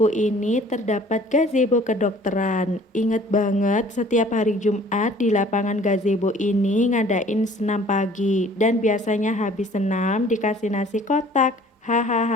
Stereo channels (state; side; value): normal; both; correlation 0.52